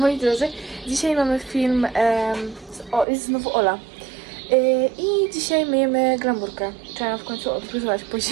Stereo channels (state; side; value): drops out; left; at 3.1 s